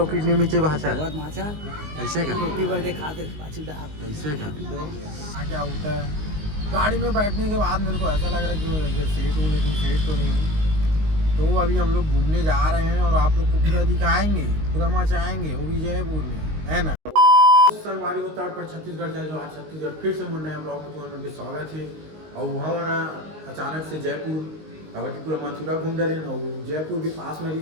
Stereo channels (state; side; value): late; left; 19 ms